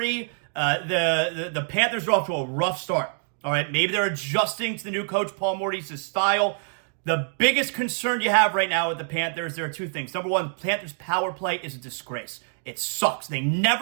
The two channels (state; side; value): silent; left; 61 dB below the other